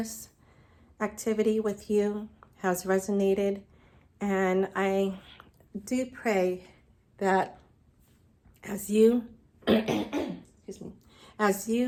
activity with you has resonated, and I do pray that as you excuse me, as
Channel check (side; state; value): both; identical; correlation 1.00